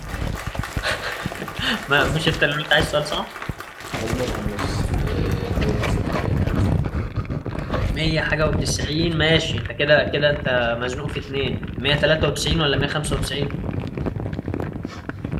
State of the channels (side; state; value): both; identical; correlation 1.00